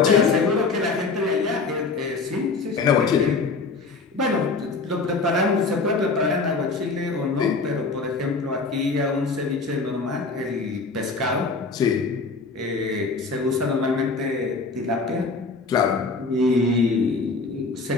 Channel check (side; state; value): right; quieter; 4.1 dB